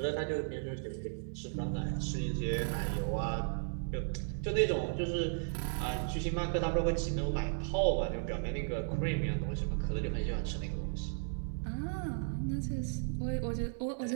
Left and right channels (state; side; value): silent; left; digital silence